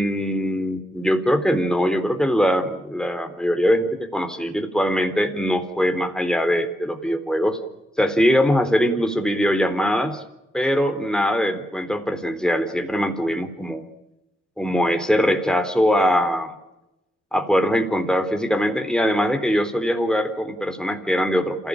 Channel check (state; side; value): normal; both; correlation 0.84